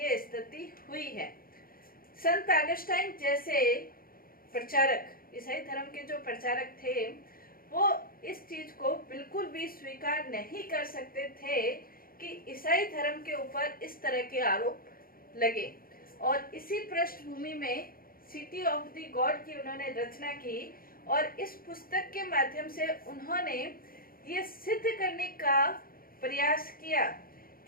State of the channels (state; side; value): late; right; 0.42 ms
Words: ये स्थिति हुई है। संत अगस्टाइन जैसे प्रचारक, ईसाई धर्म के जो प्रचारक थे, वो इस चीज को बिल्कुल भी स्वीकार नहीं कर सकते थे कि ईसाई धर्म के ऊपर इस तरह के आरोप लगे। और इसी पृष्ठभूमि में सिटी ऑफ द गॉड की उन्होंने रचना की। और इस पुस्तक के माध्यम से उन्होंने ये सिद्ध करने का प्रयास किया